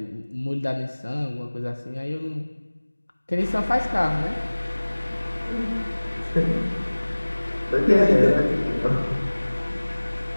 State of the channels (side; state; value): both; inverted; correlation -1.00